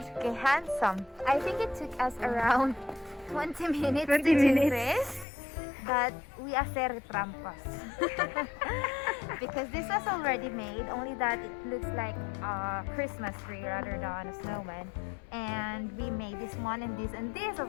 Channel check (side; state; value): right; drops out; at 5.2 s